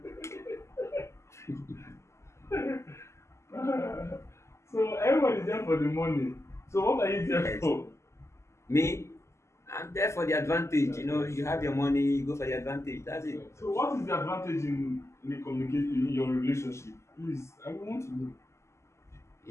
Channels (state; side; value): late; right; 0.13 ms